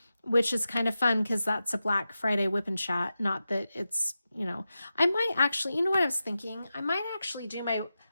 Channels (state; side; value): inverted; both; correlation -0.92